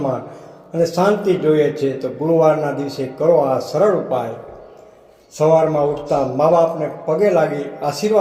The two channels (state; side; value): identical; both; correlation 1.00